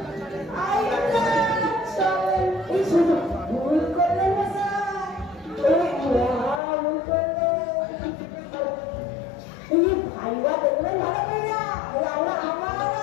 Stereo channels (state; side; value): drops out; right; at 6.6 s